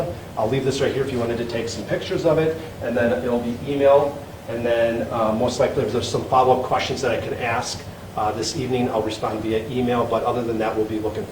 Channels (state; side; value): identical; both; correlation 1.00